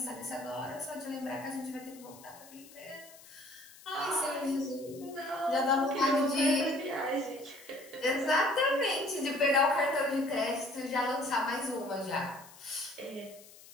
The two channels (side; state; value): left; noise; hiss, 21 dB below the sound